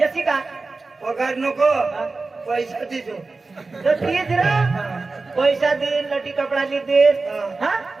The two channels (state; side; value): quieter; left; 3.8 dB